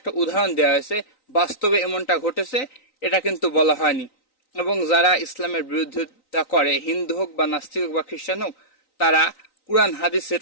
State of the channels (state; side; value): late; right; 3.9 ms